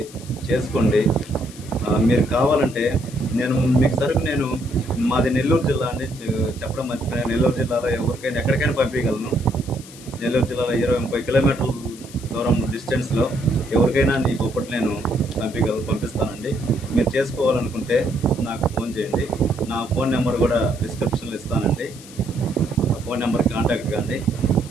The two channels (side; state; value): left; noise; hiss, 19 dB below the sound